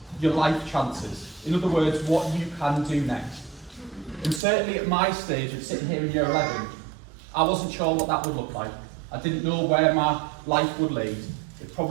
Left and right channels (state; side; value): drops out; left; at 4.4 s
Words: your life chances. In other words, what you can do next. And certainly at my stage of sitting here in Year 11, I wasn't sure what that would look like. I didn't know where my life would lead. It